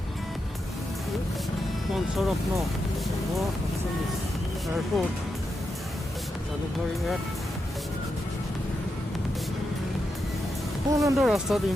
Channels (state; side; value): normal; both; correlation 0.86